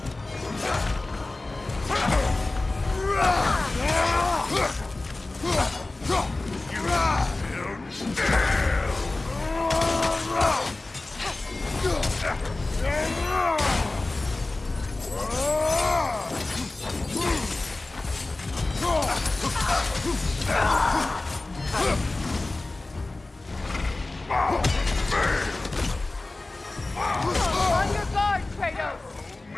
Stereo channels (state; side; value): quieter; right; 3.1 dB